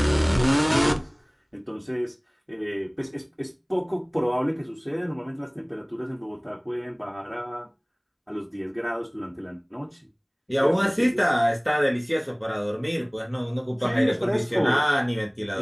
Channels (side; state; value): both; identical; correlation 1.00